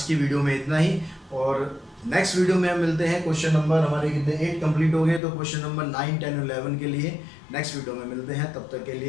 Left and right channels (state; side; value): drops out; right; at 5.2 s